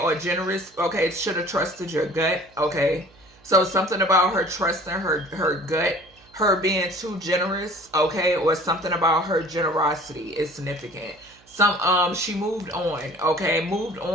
generous. Okay, should have trusted your gut. Okay, so something about her trusting her gut, her being too generous. Okay, or something about her generosity is significant. She moved on. Okay, moved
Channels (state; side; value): noise; right; hum, 29 dB below the sound